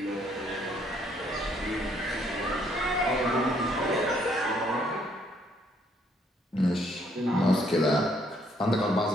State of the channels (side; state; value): both; normal; correlation 0.68